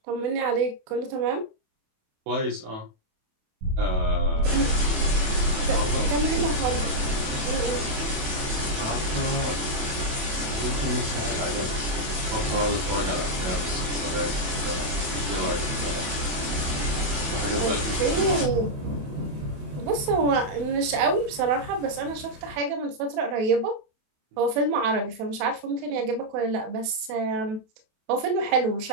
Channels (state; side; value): late; left; 28 ms